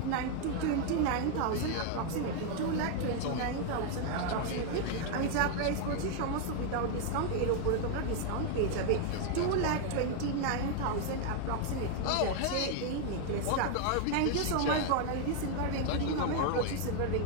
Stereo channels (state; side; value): different; both; correlation 0.00